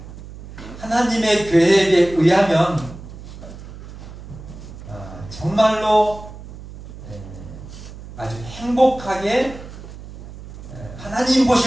하나님의 계획에 의하면 정말로 아주 행복하게 하나님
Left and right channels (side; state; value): right; noise; hum, 14 dB below the sound